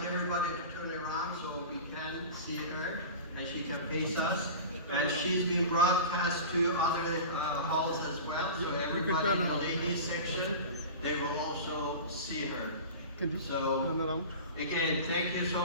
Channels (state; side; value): inverted; both; correlation -0.33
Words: everybody to turn around so we can see her and she can face us. And she's being broadcast to other halls as well. So everybody in the ladies section, they will also see her. Can you So, turn around? again, thank you